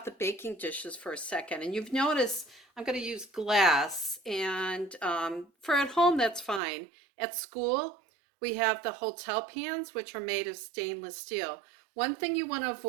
the baking dishes for a second. And you've noticed I'm gonna use glass, and for at home, that's fine. At school, we have the hotel pans, which are made of stainless steel. One thing you wanna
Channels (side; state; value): left; drops out; at 6.6 s